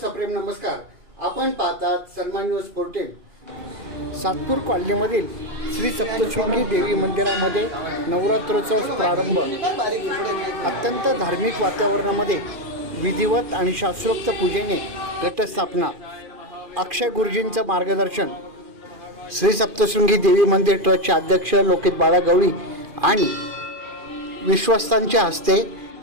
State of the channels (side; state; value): left; late; 2.4 ms